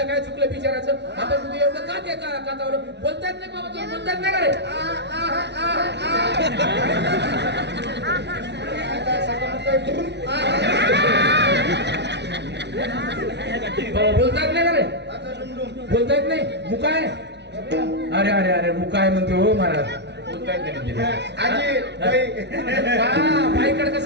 काय चुकलं बिचाराचं आता तुम्ही एवढं का ते कातावर बोलतायत नाही बाबा तुम्ही बोलतायत नाही का रे बोलतायत नाही का रे बोलतायत नाही मुकाय अरे अरे अरे मुकाय म्हणते हो महाराज बोलतायत बाईकडे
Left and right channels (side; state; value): left; late; 0.50 ms